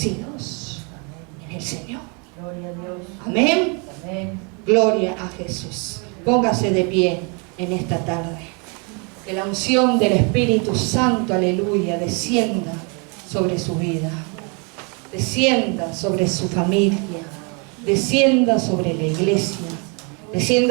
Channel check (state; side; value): quieter; left; 34.1 dB